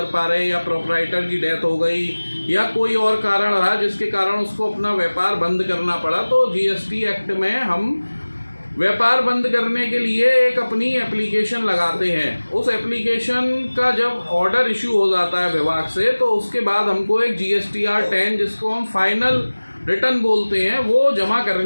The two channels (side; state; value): both; inverted; correlation -1.00